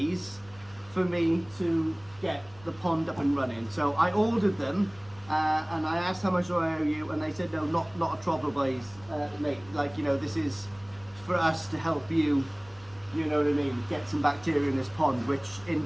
for me to get the pond up and running. So I ordered them and I asked how much do I owe you, and they said no, not a trouble, boys, mate. Like, you know, this is for us to help you, you know what I mean, get some bacteria in this pond, which in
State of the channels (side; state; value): left; noise; rumble, 24 dB below the sound